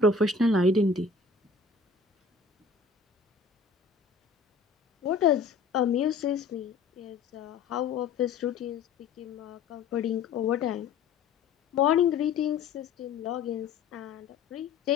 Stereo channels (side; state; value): right; quieter; 4.7 dB